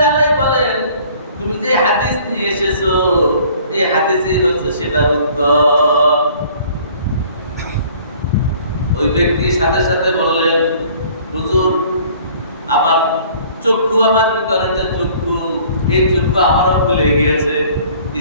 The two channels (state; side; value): inverted; both; correlation -0.53